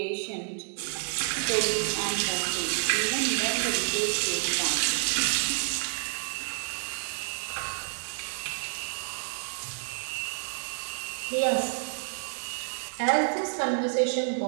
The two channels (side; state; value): left; silent; 57 dB below the other